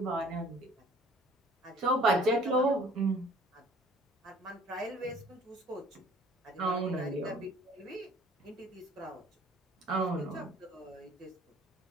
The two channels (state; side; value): normal; both; correlation 0.52